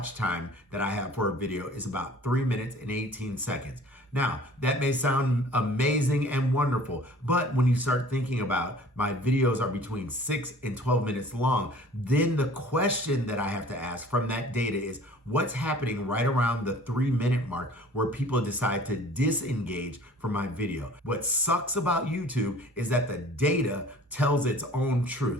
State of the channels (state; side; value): normal; both; correlation 0.49